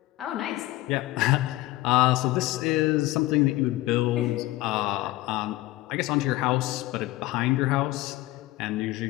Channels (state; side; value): quieter; right; 17.7 dB